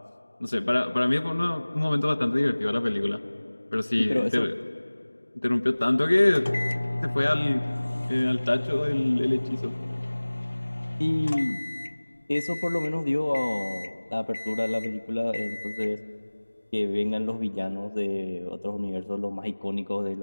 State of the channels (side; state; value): both; inverted; correlation -1.00